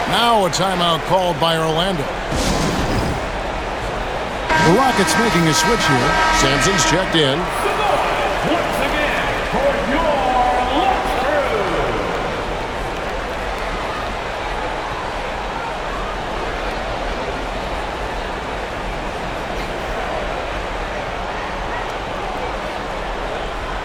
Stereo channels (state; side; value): identical; both; correlation 1.00